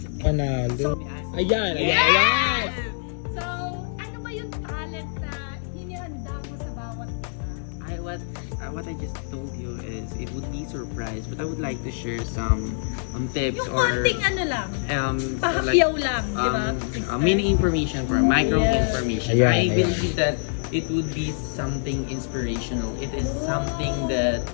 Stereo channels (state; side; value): silent; right; digital silence